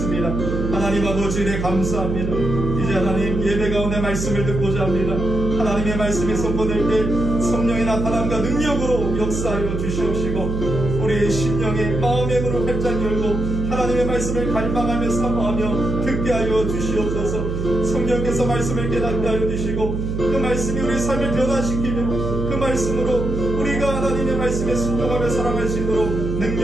하나님 아버지 네 감사합니다. 이제 하나님 예배 가운데 말씀을 듣고자 합니다. 하나님의 말씀이 선포될 때 성령의 나타남과 능력으로 역사하여 주시옵시고 우리의 심령의 마음의 문을 활짝 열고 하나님의 말씀을 갈망하며 사모하며 듣게 하여 주시옵소서. 성령께서 말씀을 깨닫게 하여 주시고 그 말씀이 우리 삶을 변화시키며 그 말씀으로 우리가 하나님의 말씀에 순종하며 살아갈 수 있도록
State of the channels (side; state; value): right; noise; hum, 3 dB below the sound